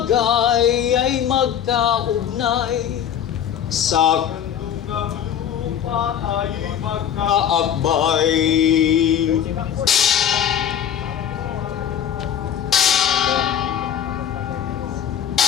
ay magkaugnay, sa kandungang lupa ay magkaakbay.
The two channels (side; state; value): right; quieter; 9.4 dB